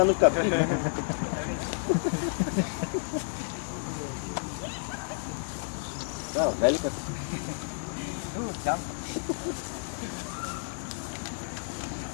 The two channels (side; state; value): right; silent; digital silence